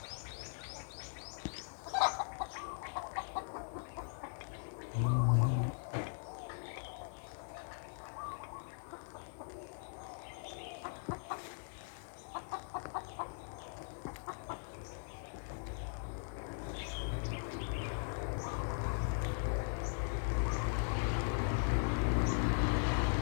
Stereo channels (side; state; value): right; silent; digital silence